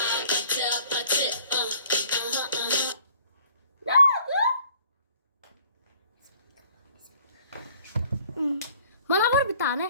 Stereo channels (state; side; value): inverted; both; correlation -0.57